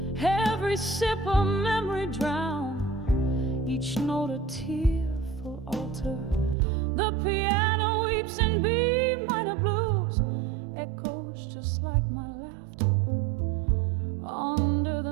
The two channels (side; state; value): left; drops out; at 6.6 s